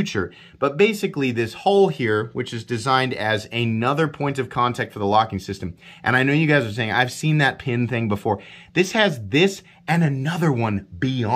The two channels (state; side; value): identical; both; correlation 1.00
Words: but basically this hole here, which is designed as another point of contact for the locking system, and I know you guys are saying, I've seen that pin thing before. This has this and another one